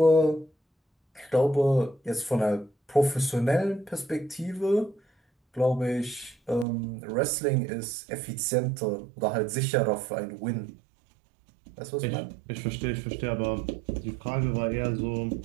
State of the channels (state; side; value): drops out; left; at 6.7 s